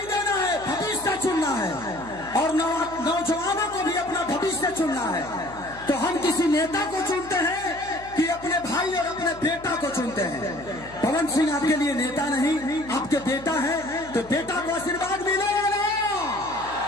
देना है, भविष्य चुनना है, और नौजवानों को भी अपना भविष्य चुनना है। तो हम किसी नेता को चुनते हैं कि अपने भाई और अपने बेटा को चुनते हैं। पवन सिंह आपके लिए नेता नहीं, आपके बेटा है, तो बेटा को आशीर्वाद मिलेगा ना।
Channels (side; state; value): left; noise; hum, 19 dB below the sound